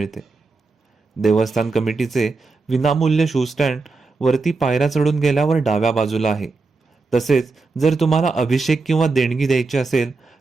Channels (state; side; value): quieter; left; 3.9 dB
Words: देवस्थान कमिटीचे विनामूल्य शू स्टँड वरती पायऱ्या चढून गेल्यावर डाव्या बाजूला आहे. तसेच जर तुम्हाला अभिषेक किंवा देणगी द्यायची असेल